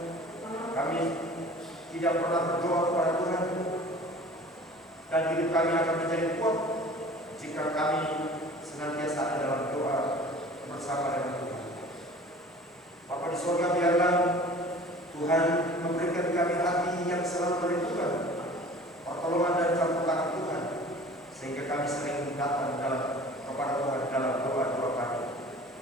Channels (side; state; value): both; normal; correlation 0.44